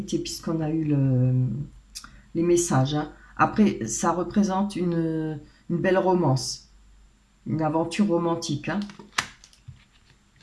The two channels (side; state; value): both; identical; correlation 1.00